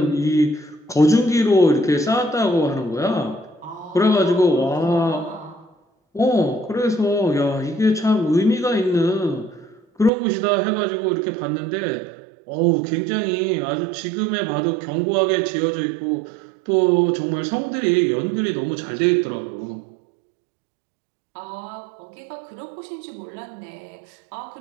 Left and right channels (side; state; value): left; drops out; at 10.1 s